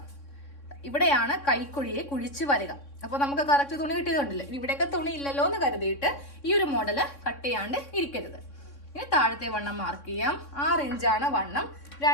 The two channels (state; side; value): late; right; 3.6 ms